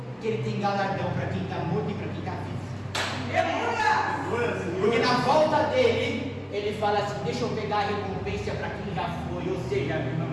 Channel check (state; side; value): identical; both; correlation 1.00